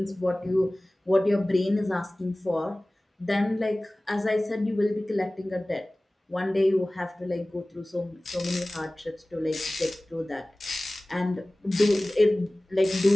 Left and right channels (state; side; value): normal; both; correlation 0.98